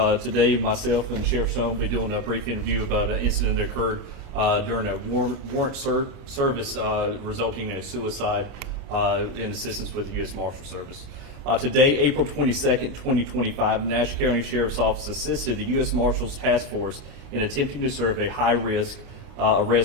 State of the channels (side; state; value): left; late; 29 ms